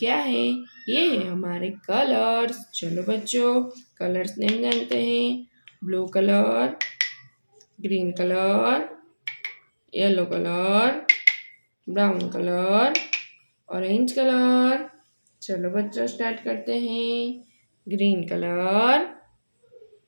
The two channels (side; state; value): both; inverted; correlation -1.00